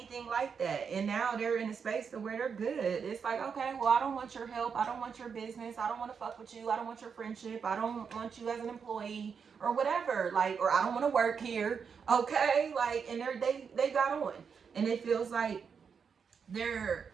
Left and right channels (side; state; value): left; quieter; 6.3 dB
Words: like that. And now they're in a space to where they're good. It's like, okay, well, I don't want your help. I don't want your business. I don't want to fuck with you. I don't want your friendship. I don't want you as an employee or whatever. Like, or I don't want to work here. Okay. Like, and they got on. And it feels like